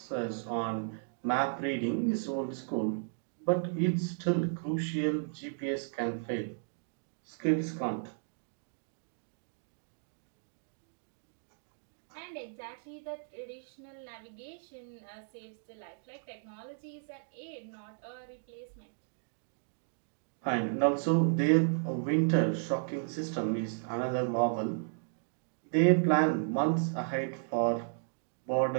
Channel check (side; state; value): left; silent; digital silence